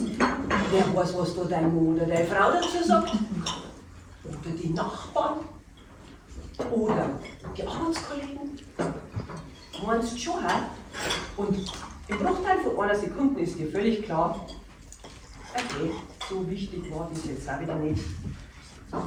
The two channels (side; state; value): both; identical; correlation 1.00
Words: Wer weiß, was da dein Mann oder deine Frau dazu sagt. Oder die Nachbarn. Oder die Arbeitskollegen. Meinst du schon, hä? Und im Bruchteil von einer Sekunde ist dir völlig klar, okay, so wichtig war das jetzt auch wieder nicht.